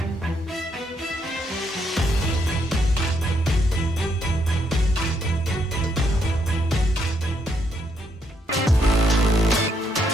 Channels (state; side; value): normal; both; correlation 0.75